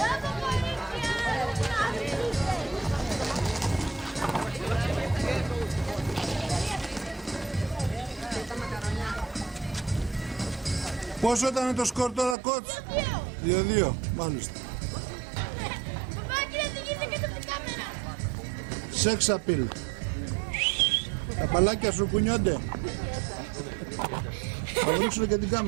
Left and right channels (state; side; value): drops out; left; at 12.4 s